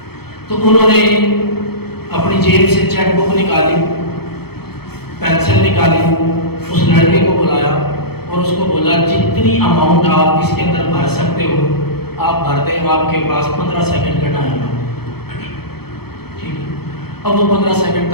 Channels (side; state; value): right; late; 0.96 ms